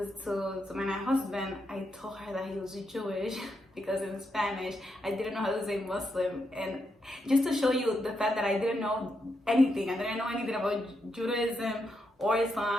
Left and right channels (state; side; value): normal; both; correlation 0.82